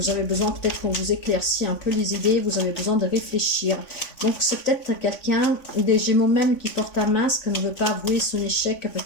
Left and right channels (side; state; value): right; late; 3.5 ms